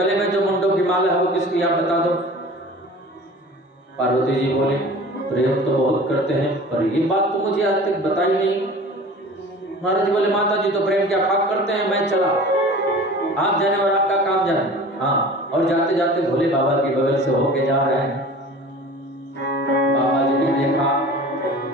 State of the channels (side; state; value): both; normal; correlation 0.41